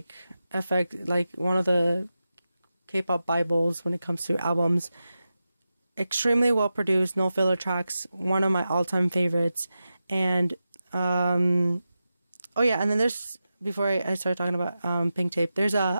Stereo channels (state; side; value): inverted; both; correlation -0.92